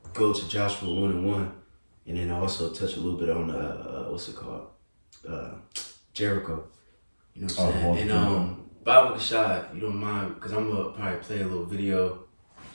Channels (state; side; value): inverted; both; correlation -1.00